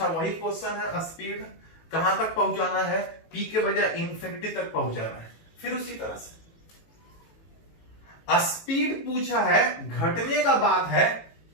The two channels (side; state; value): right; late; 18 ms